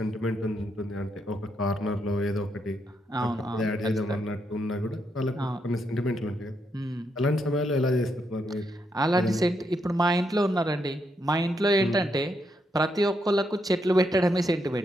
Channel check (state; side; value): normal; both; correlation 0.79